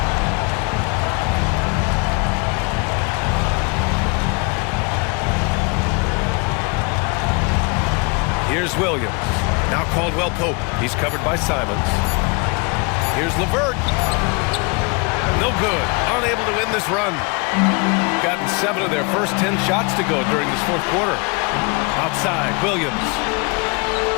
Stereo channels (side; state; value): right; quieter; 29.9 dB